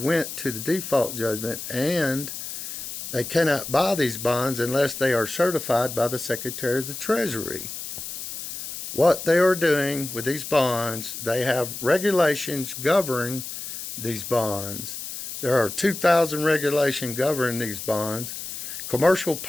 to the default judgment, and they cannot buy these bonds unless they are certified by the Secretary of the Treasury. What they are doing with these bonds, they have regulations governing these bonds. There are 2,000 regulations governing these bonds. Commercial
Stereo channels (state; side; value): noise; left; hiss, 8 dB below the sound